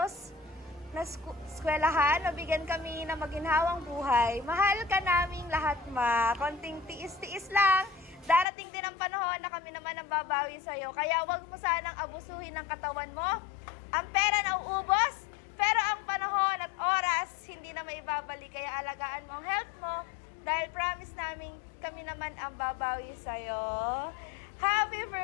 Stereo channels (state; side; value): drops out; right; at 8.5 s